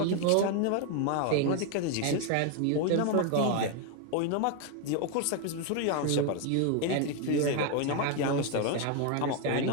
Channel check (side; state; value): both; different; correlation 0.01